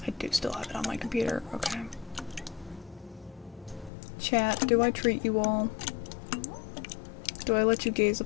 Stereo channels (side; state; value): right; drops out; at 3.9 s